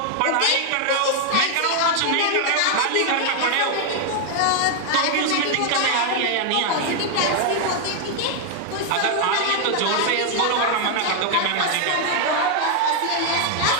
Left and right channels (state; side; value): different; both; correlation 0.00